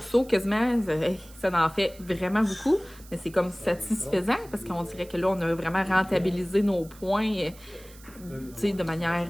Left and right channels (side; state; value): right; noise; hiss, 22 dB below the sound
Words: quasiment, ça en fait vraiment beaucoup. Mais c'est comme satisfaisant parce qu'on dirait que là, on a vraiment rentabilisé nos points de manière